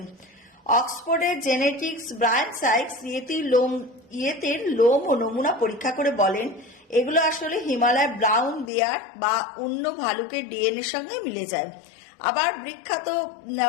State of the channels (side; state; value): right; drops out; at 8.7 s